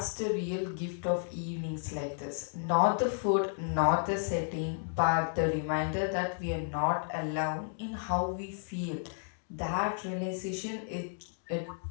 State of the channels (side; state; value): right; silent; digital silence